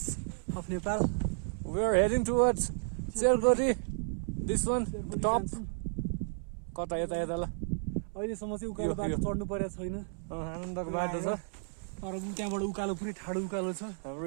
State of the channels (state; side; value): silent; left; 56 dB below the other